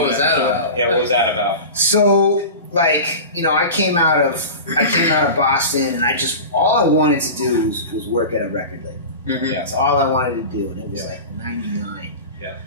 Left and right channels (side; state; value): both; inverted; correlation -0.31